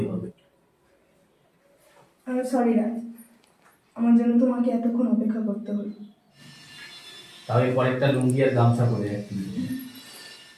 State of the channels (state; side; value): identical; both; correlation 1.00